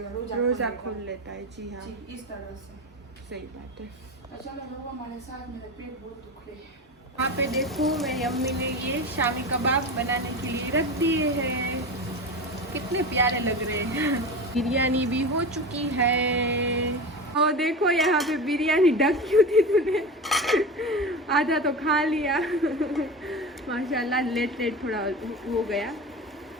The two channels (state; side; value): normal; both; correlation 0.27